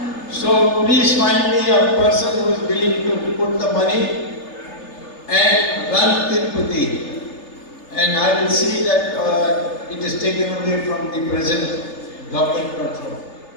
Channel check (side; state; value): right; late; 3.2 ms